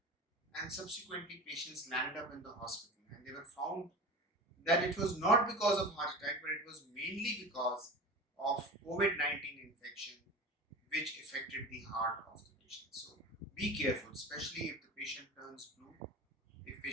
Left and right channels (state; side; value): normal; both; correlation 0.32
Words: and subsequently patients landed up in the hospital and they were found that it was not because of heart attack, but it was mainly because of COVID-19 infection which affected the heart of the patient. So be careful, especially if the patient turns blue, if